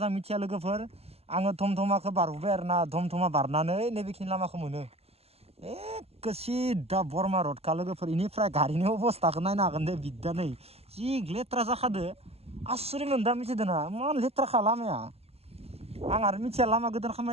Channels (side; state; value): left; late; 0.29 ms